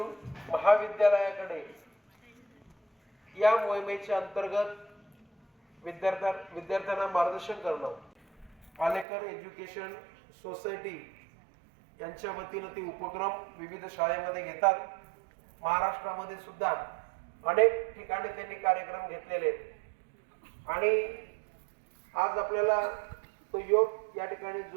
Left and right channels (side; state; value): left; drops out; at 9.1 s